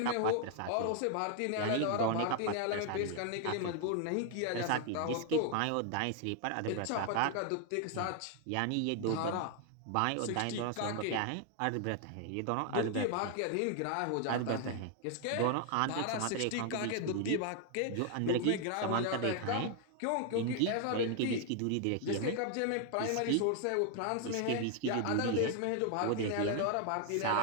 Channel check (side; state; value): both; different; correlation 0.00